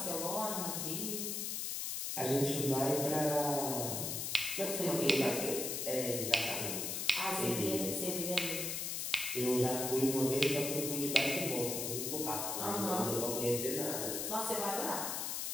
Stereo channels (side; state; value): left; noise; hiss, 2 dB below the sound